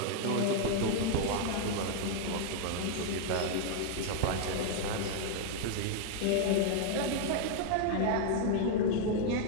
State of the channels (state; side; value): different; both; correlation 0.00